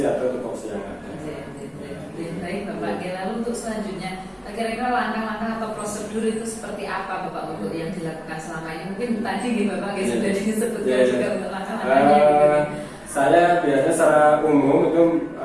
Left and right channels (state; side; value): identical; both; correlation 1.00